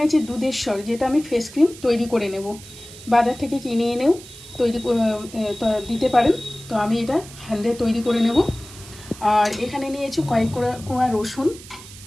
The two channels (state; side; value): noise; right; hiss, 17 dB below the sound